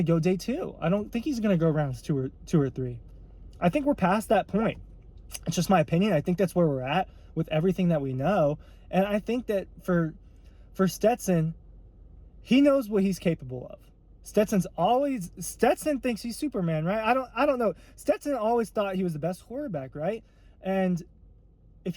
go day 2. I don't think he's going to go rounds 2 or 3. I think we're past that point. It's just my opinion. I think that's where we're at with everything that we know. And I think that for Stetson, he knows what he's capable of. Stetson thinks he's Superman, right? I don't know. Stetson always thought he was the best quarterback, right? And if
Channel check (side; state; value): both; identical; correlation 1.00